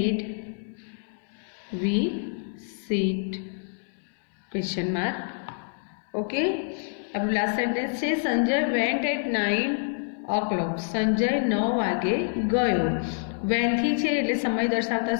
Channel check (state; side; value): silent; right; 59 dB below the other